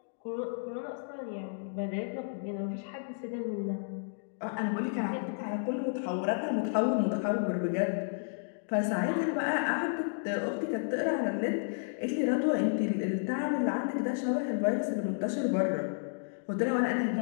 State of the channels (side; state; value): right; silent; digital silence